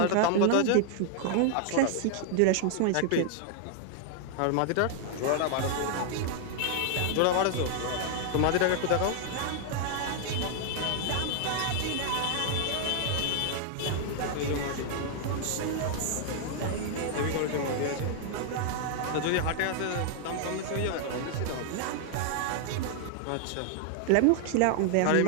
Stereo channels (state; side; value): different; both; correlation 0.00